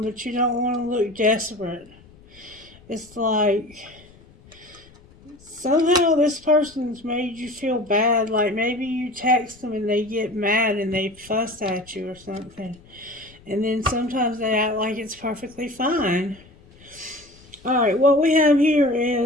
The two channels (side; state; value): left; noise; rumble, 26 dB below the sound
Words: but you don't want to look desperate. It's like somehow this person's made you feel bad. Like maybe you text them and they get mad and they fuss at you or something. And then sometimes they act like it's perfectly fine. Alright, what we have here